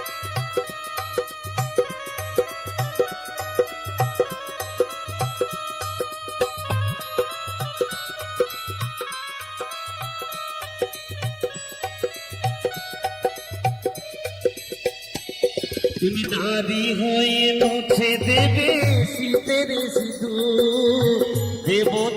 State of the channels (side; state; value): both; identical; correlation 1.00